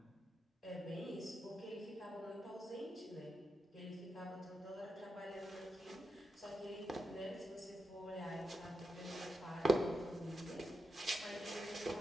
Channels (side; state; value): both; normal; correlation 0.88